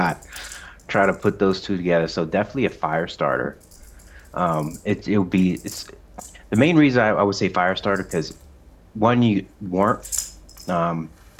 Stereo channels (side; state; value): both; identical; correlation 1.00